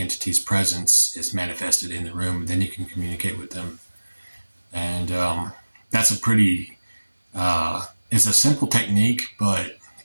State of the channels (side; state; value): both; inverted; correlation -1.00